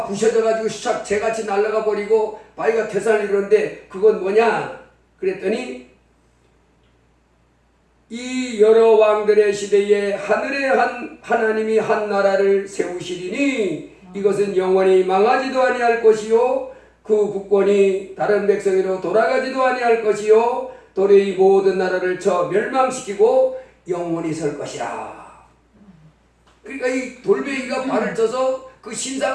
부셔져 가지고 샥 재같이 날아가 버리고 바위가 태산을 이루는데 그건 뭐냐? 그랬더니 이 여러 왕들의 시대에 하늘에 하나님이 한 나라를 세우시리니 이것은 영원히 망하지도 아니할 것이요 그 국권이 다른 백성으로 돌아가지도 아니할 것이요 도래의 모든 나라를 쳐 멸망시키고 영원히 설 것이라. 그러니까 이 돌멩이가 발을 쳐서 그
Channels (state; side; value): identical; both; correlation 1.00